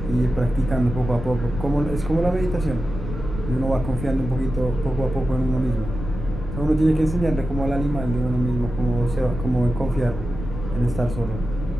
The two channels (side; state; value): left; noise; rumble, 7 dB below the sound